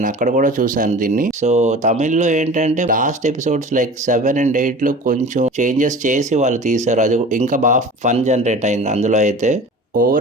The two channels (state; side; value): normal; both; correlation 0.39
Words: అక్కడ కూడా చూశాను దీన్ని. సో తమిళ్లో ఏంటంటే లాస్ట్ ఎపిసోడ్స్ లైక్ 7 and 8లో కొంచెం చేంజెస్ చేసి వాళ్ళు తీశారు. అది ఇంకా బాగా ఫన్ జనరేట్ అయింది అందులో అయితే.